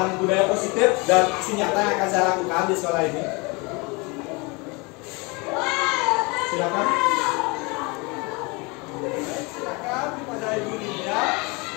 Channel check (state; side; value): quieter; right; 27.9 dB